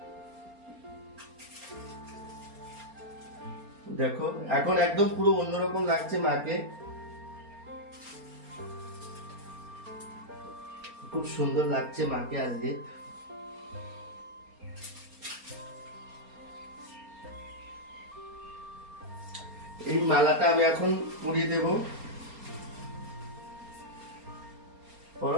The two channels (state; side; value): late; left; 4.3 ms